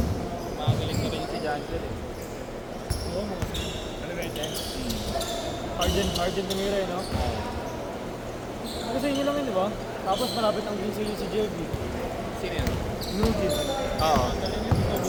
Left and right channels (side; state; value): both; identical; correlation 1.00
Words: Makagaling na rin si Janjel eh. Oo, mga sino. Ano ba yun? Argent tumira eh, no? Ano sa inyo lang yun, di ba? Tapos malapit ang green sa'yo si JB. Sino yun? Nugis. Oo. Galing yun.